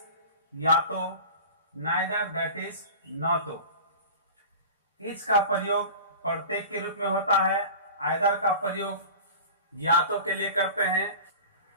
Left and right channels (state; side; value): inverted; both; correlation -0.36